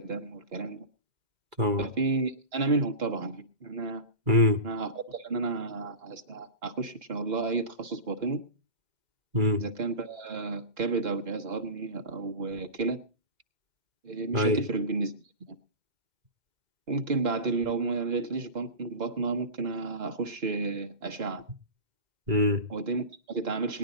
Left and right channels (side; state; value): left; late; 2.1 ms